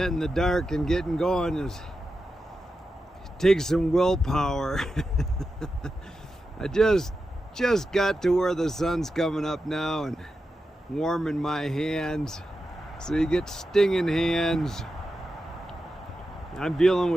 in the dark and getting going takes some willpower. I just got to where the sun's coming up now and warming my hands. So you get stinging hands. I'm dealing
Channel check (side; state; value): both; normal; correlation 0.90